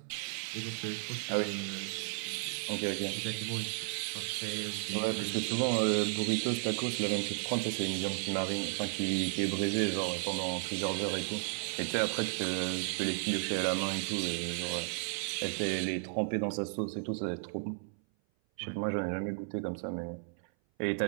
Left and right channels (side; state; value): left; silent; 55 dB below the other